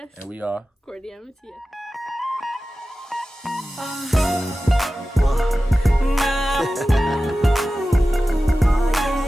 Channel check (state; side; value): normal; both; correlation 0.95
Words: And we are Courtney and Mattias.